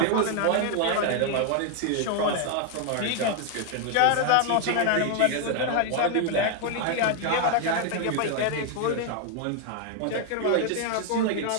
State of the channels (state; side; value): different; both; correlation 0.00